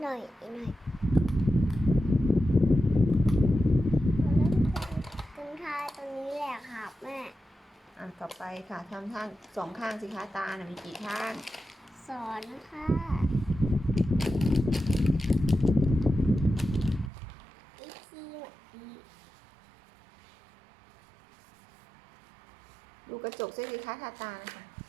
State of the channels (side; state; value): left; drops out; at 17.1 s